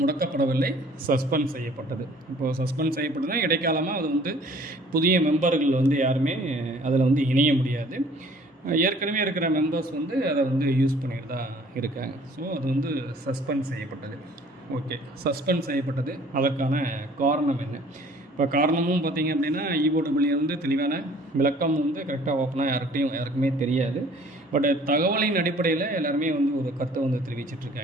முடக்கப்படவில்லை, சஸ்பெண்ட் செய்யப்பட்டது. இப்போது சஸ்பெண்ட் செய்யப்பட்டதுன்னா இடைக்காலமாக அது புதிய மெம்பர்கள் யாருமே அதில் இணைய முடியாது. ஏற்கனவே இருக்கிற மெம்பர்ஸ் அதை யூஸ் பண்ணிட்டு தான் இருக்காங்க. ஸோ அது சஸ்பெண்ட் செய்யப்பட்டது. ஓகே, சஸ்பெண்ட் செய்யப்பட்டது. அதற்கான காரணம் என்ன? இப்போ காரணமும் பார்த்திங்க அப்படின்னா EOW தெளிவான விளக்கம் கரெக்டாக ஓப்பனாக யாருக்குமே தெரியாது. பட் தகவலின் அடிப்படையில் எல்லாருமே ஒரு கருத்தை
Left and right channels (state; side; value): normal; both; correlation 0.54